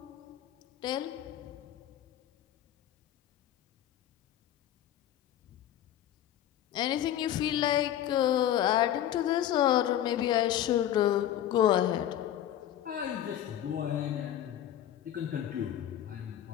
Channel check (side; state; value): right; quieter; 11.5 dB